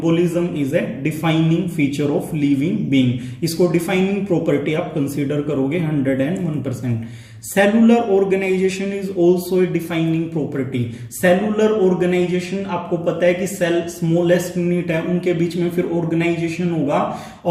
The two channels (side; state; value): both; identical; correlation 1.00